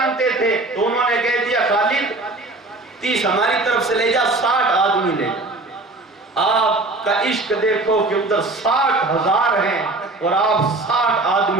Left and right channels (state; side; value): quieter; left; 3.0 dB